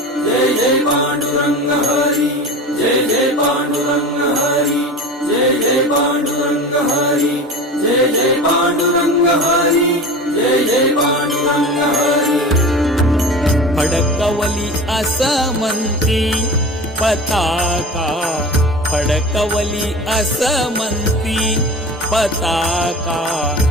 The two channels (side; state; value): both; normal; correlation 0.33